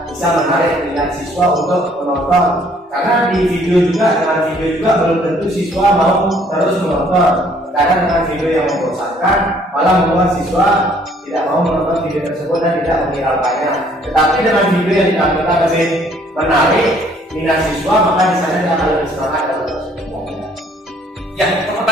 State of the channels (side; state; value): both; normal; correlation 0.61